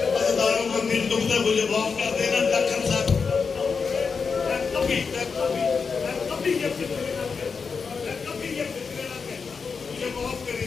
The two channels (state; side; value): quieter; right; 5.3 dB